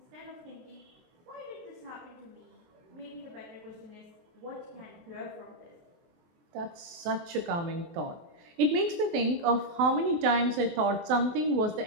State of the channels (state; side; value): late; left; 24 ms